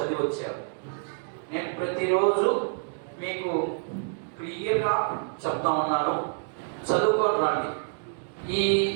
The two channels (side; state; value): left; silent; digital silence